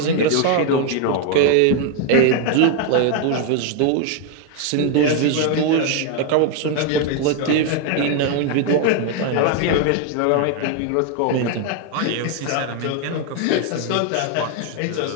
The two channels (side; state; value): both; different; correlation 0.01